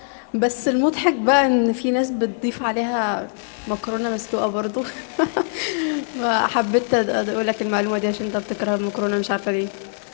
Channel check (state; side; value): silent; right; digital silence